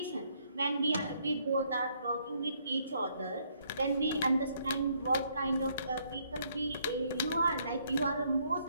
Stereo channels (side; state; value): both; inverted; correlation -0.70